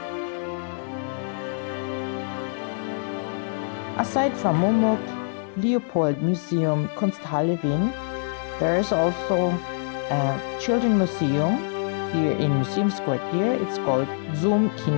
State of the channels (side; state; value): right; silent; 62 dB below the other